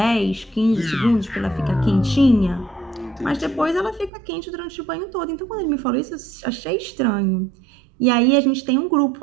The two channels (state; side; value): drops out; left; at 4.1 s